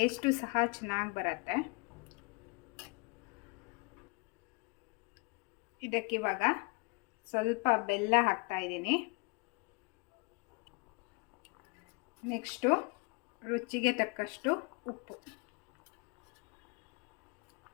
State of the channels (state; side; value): quieter; right; 31.1 dB